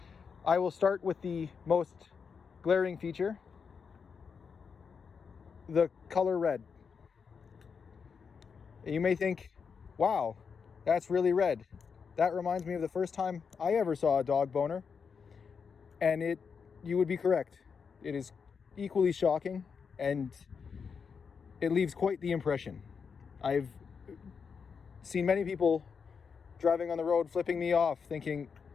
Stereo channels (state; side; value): quieter; right; 6.0 dB